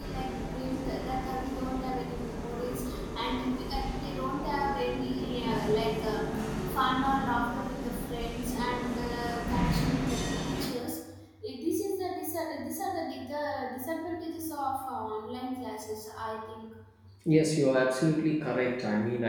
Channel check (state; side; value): identical; both; correlation 1.00